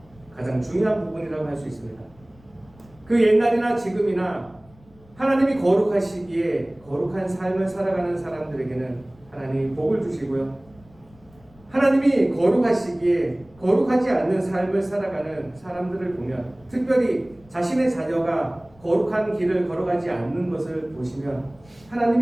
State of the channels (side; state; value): left; noise; rumble, 27 dB below the sound